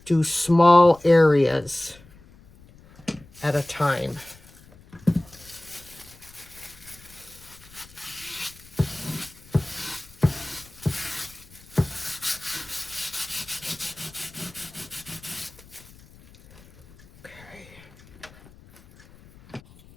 do small areas at a time.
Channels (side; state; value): left; noise; rumble, 24 dB below the sound